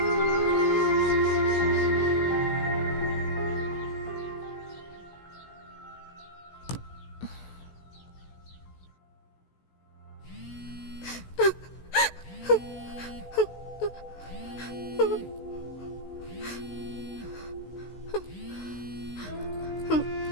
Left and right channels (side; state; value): right; late; 16 ms